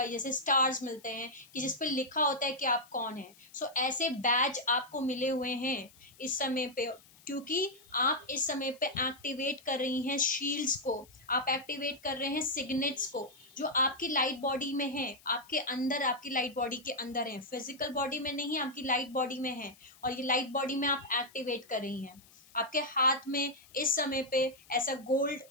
जैसे स्टार्स मिलते हैं कि जिस पे लिखा होता है कि आप कौन है। सो ऐसे बैज आपको मिले हुए हैं इस समय पे, क्योंकि आप इस समय पे एक्टिवेट कर रही हैं शील्ड्स को, आप एक्टिवेट कर रहे हैं सिग्नेट्स को जो आपकी लाइट बॉडी में है, आपके अंदर, आपकी लाइट बॉडी के अंदर है, फिजिकल बॉडी में नहीं, आपकी लाइट बॉडी में है, और ये लाइट बॉडी में आप एक्टिवेट कर रही हैं। आपके हाथ में इस समय पे ऐसा गोल्ड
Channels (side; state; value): left; noise; hiss, 25 dB below the sound